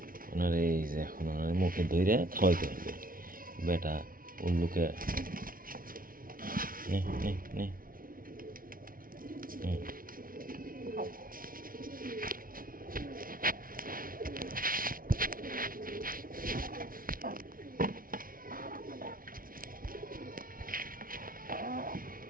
ওনার এই যে এখন ওনার মুখে ধইরে খাওয়াইতে হবে। বেটা উল্লুকে নে নে নে।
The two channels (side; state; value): left; late; 0.42 ms